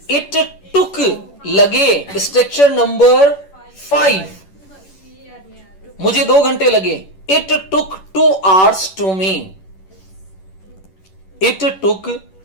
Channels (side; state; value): right; late; 11 ms